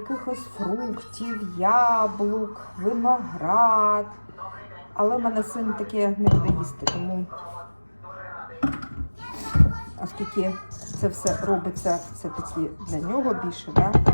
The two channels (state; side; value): inverted; both; correlation -1.00